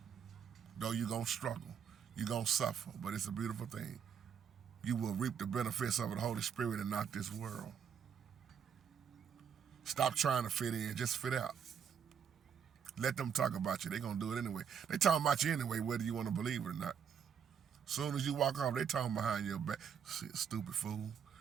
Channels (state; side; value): quieter; left; 7.6 dB